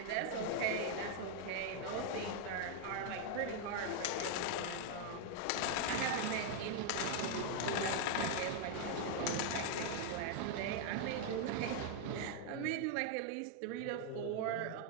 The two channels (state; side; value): different; both; correlation 0.00